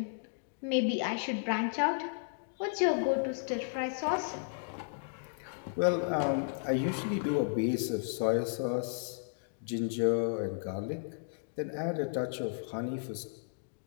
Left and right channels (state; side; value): silent; right; digital silence